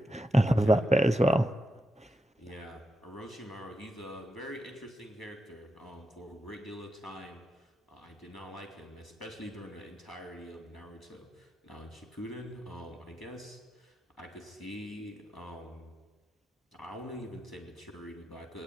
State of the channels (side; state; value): both; normal; correlation 0.85